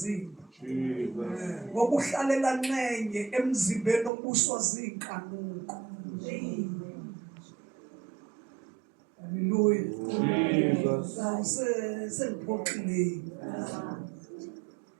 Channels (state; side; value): drops out; left; at 4.1 s